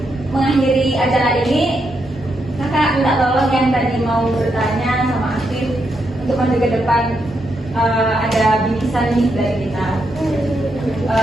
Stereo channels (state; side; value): normal; both; correlation 0.81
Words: mengakhiri acara ini, kakak minta tolong yang tadi mau bertanya sama Afif untuk maju ke depan. Ada bingkisan nih dari kita.